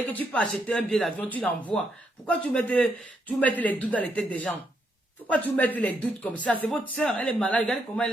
que tu peux acheter un billet d'avion, tu l'envoies. Pourquoi tu mets les doutes dans les têtes des gens? Pourquoi tu mets les doutes comme ça? C'est votre soeur, elle est malade. Regardez comment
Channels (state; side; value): normal; both; correlation 0.77